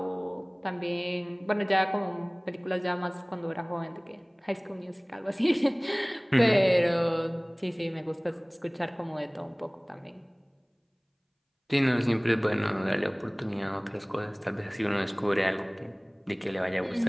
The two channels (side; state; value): both; identical; correlation 1.00